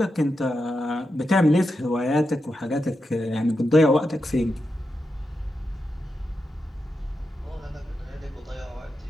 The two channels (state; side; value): normal; both; correlation 0.88